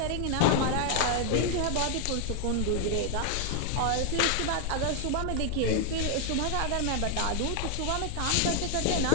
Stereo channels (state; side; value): different; both; correlation 0.00